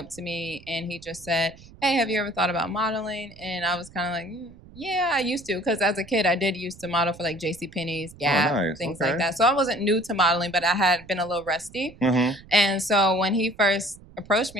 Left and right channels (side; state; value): right; noise; rumble, 22 dB below the sound